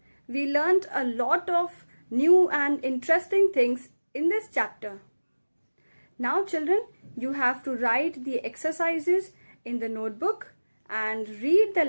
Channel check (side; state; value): both; inverted; correlation -1.00